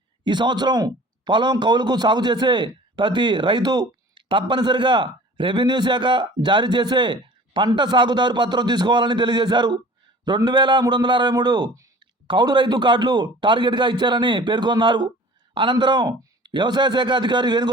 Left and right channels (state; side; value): normal; both; correlation 0.45